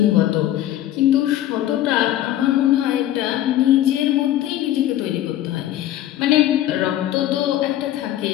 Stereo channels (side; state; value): right; quieter; 13.0 dB